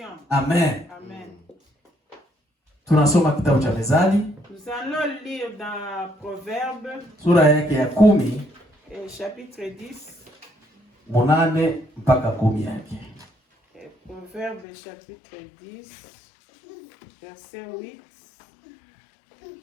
Amen. Amen. Tunasoma kitabu cha Mezali Nous allons lire dans Proverbes, sura yake ya 10 chapitre 10. 8 mpaka 10 yake. Proverbes, chapitre 10, verset 8.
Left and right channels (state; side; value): drops out; right; at 14.7 s